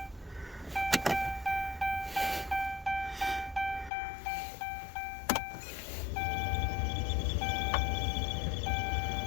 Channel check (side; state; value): right; drops out; at 3.9 s